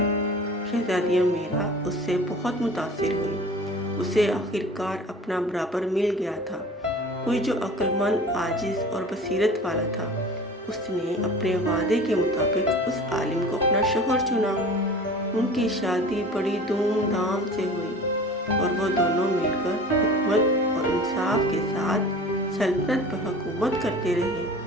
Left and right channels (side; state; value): both; normal; correlation 0.40